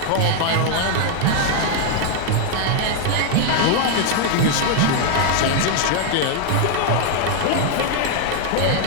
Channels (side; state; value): both; different; correlation 0.00